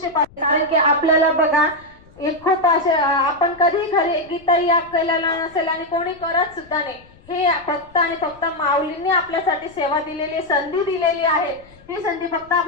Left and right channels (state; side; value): noise; left; rumble, 26 dB below the sound